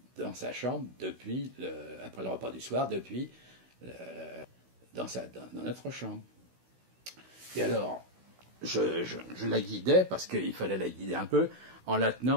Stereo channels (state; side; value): late; left; 16 ms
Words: dans sa chambre, après le repas du soir, dans notre chambre. Et alors, je la guidais, parce qu'il fallait la guider un peu, en la